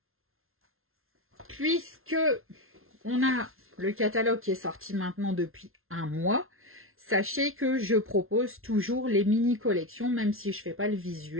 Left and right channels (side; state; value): left; late; 0.61 ms